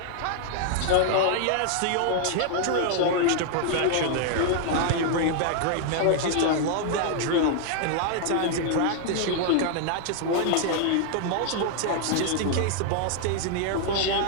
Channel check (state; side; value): different; both; correlation 0.00